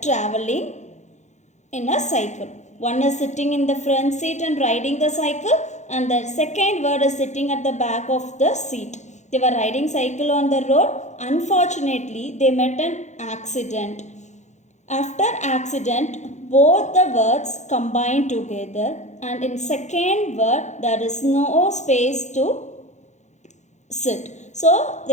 in a cycle. One is sitting in the front seat and riding the cycle, and the second word is sitting at the back of the seat. They were riding cycle on the road. Unfortunately, they met an accident. After accident, both the words combine together, and in second word there is no space to sit. So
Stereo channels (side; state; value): right; late; 0.34 ms